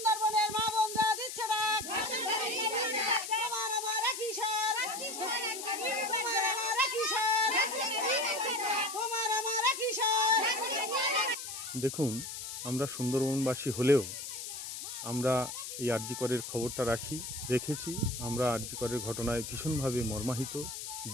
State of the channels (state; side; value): noise; left; hiss, 7 dB below the sound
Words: মা বোনরা দিচ্ছে ডাক। তোমার আমার কিশোর, তোমার আমার কিশোর, তোমার আমার কিশোর। দেখুন, আমরা সুন্দরবনবাসী হলেও আমরা এই আরজি করের খবরটা রেখেছি। আমরা আরজি করের ঘটনায় ভীষণভাবে মর্মাহিত,